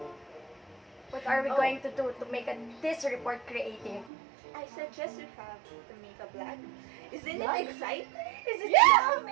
What are we Oh. going to do to make this report creative? I suggest you have to make a vlog. Isn't Vlog? it exciting? Is it Yeah!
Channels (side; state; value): left; drops out; at 4.1 s